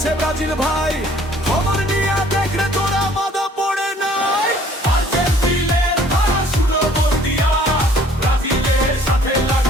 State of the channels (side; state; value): both; normal; correlation 0.56